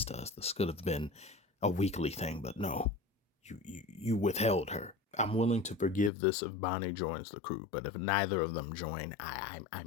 to us. This could have been a weekly thing, but no, you withheld her. I'm willing to forgive this if Bonnie joins the crew, but if neither of them join, I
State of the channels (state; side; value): drops out; right; at 6.1 s